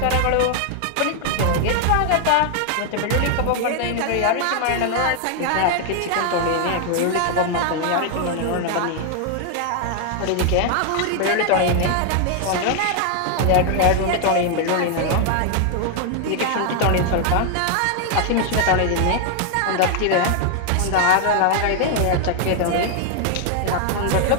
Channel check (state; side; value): different; both; correlation 0.00